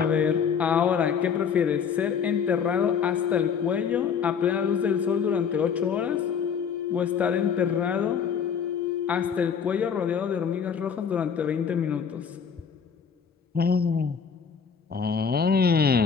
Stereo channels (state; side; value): quieter; right; 6.8 dB